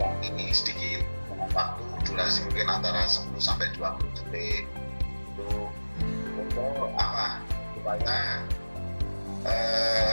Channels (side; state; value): both; inverted; correlation -1.00